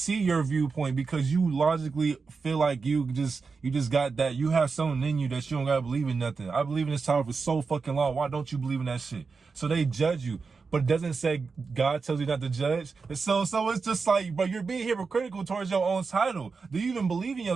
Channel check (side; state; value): left; quieter; 4.8 dB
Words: your viewpoint because you logically feel like you just got that. You have something in you that you don't gotta believe in nothing. I believe in this tower for so fucking long. Why don't you believe in that shit? So they judge you. But it doesn't say God tells you not to judge. And so it's just like, bro, you're being hypocritical towards your own title. Do you even believe in